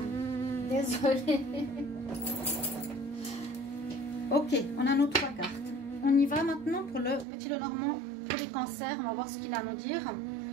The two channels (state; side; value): drops out; left; at 7.2 s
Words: Désolée. Ok, on a nos 3 cartes. On y va maintenant pour le petit Lenormand, pour les cancers. On va voir ce qu'il a à nous dire.